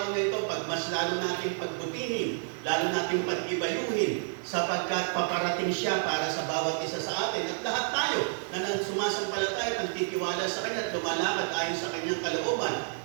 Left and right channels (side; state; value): left; silent; digital silence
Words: na ito, mas lalo natin pagbutihin, lalo natin pag-ibayuhin, sapagkat paparating siya para sa bawat isa sa atin. At lahat tayo na sumasampalataya at nagtitiwala sa Kanya at lumalakad ayon sa Kanyang kalooban.